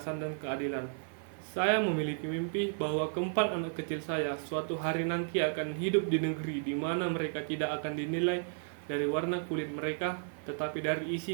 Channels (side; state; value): left; silent; 55 dB below the other